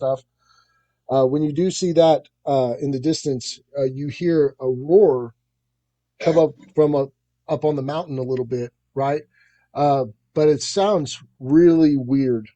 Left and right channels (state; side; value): identical; both; correlation 1.00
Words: When you do see that in the distance, you hear a roar come up from up on the mountain a little bit, right? Uh, but it sounds really weird.